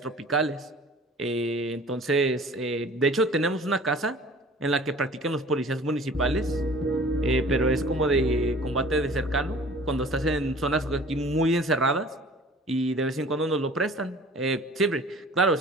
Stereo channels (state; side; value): normal; both; correlation 0.47